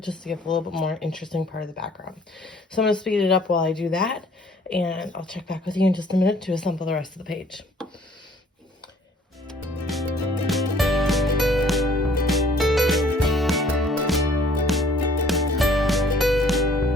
to give a little bit more interesting part of the background. So I'm going to speed it up while I do that, and I'll check back with you in just a minute to assemble the rest of the page.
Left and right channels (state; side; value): normal; both; correlation 0.57